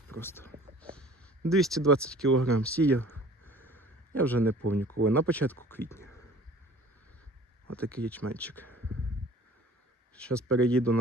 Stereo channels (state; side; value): normal; both; correlation 0.48